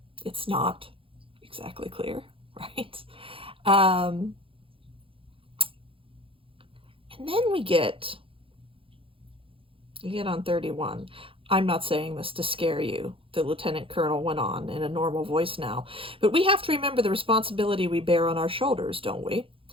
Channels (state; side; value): late; left; 0.26 ms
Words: it's not exactly clear, right? And then we get on 31. I'm not saying this to scare you, the lieutenant colonel went on in a normal voice now, but we have to remember the responsibility we bear on our shoulders, don't we?